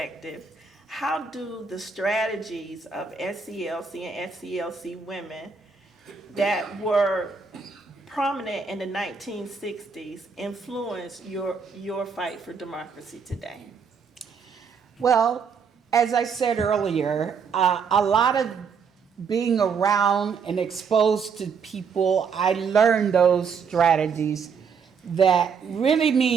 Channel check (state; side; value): quieter; left; 5.9 dB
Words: how do the strategies of SCLC and SCLC Women that were prominent in the 1960s influence your fight for democracy today? Well, as I said earlier, a lot of being around and exposed to people, I learned those strategies that really